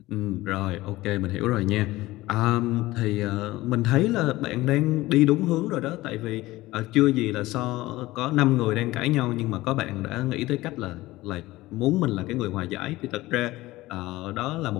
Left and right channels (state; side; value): quieter; right; 18.2 dB